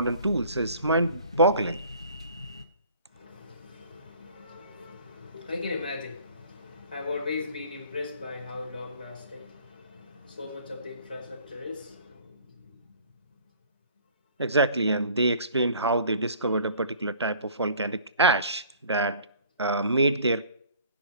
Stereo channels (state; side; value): inverted; both; correlation -0.51